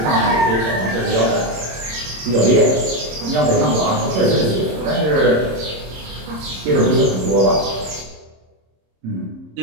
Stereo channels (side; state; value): left; late; 26 ms